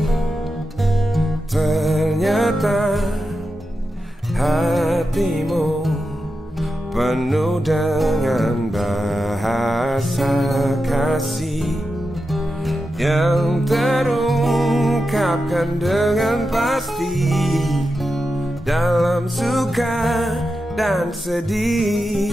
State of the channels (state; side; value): normal; both; correlation 0.90